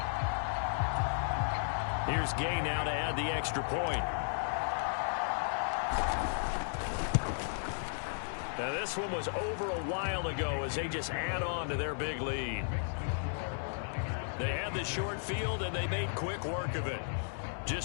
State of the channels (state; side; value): silent; right; digital silence